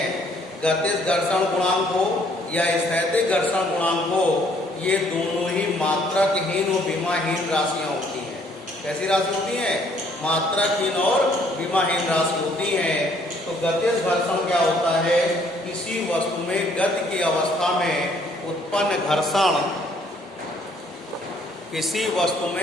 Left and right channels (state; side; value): normal; both; correlation 0.64